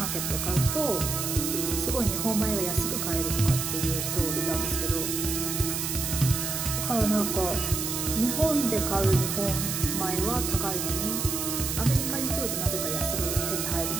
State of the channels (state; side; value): noise; right; hiss, 2 dB below the sound